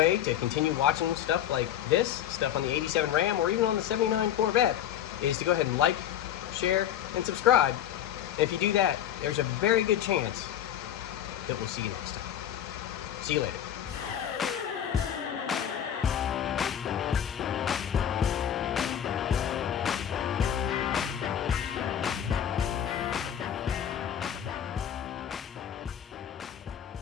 to continue watching stuff like this, stuff on the 87 Ram or even on the 79 Corvette, is to go ahead and like, share, and subscribe. And if you do that, there's a very good chance that we'll see you next time. See you later.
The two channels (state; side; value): quieter; right; 10.2 dB